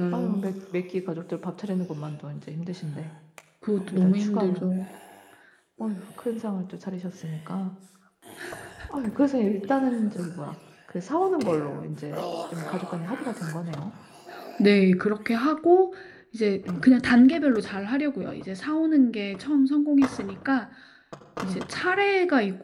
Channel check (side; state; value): both; identical; correlation 1.00